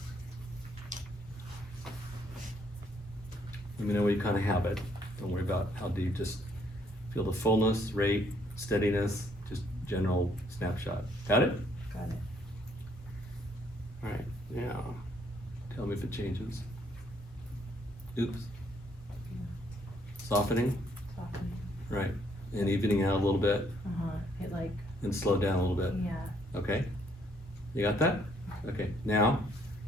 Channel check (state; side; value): normal; both; correlation 0.68